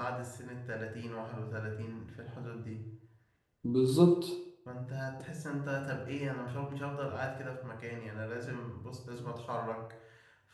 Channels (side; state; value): both; identical; correlation 1.00